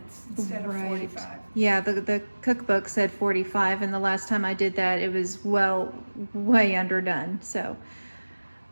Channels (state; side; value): inverted; both; correlation -1.00